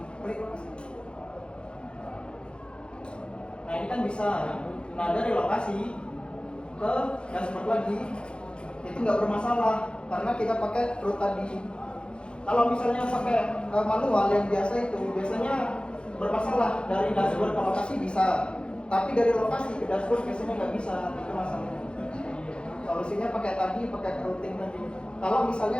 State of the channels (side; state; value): right; late; 0.055 ms